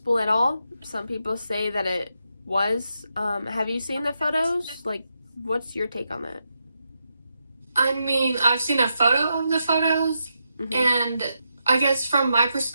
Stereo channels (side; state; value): both; inverted; correlation -0.84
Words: at all. Some people say that it was. Have you seen the photos? What's your take on that? I mean, I've seen a photo of the photos, and I guess from my